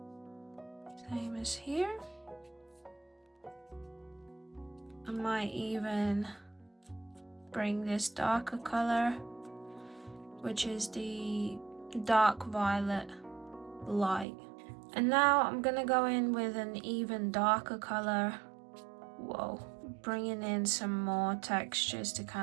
Same as here. I might even bring this darker color, which is the dark violet light. And now I'm gonna go in with an even darker color. Whoa, bringing in some more textures to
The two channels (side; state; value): left; drops out; at 14.2 s